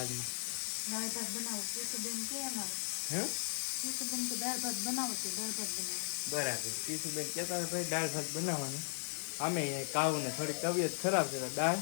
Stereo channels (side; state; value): right; silent; 53 dB below the other